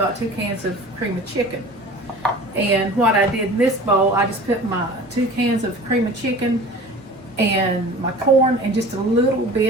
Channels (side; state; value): both; normal; correlation 0.41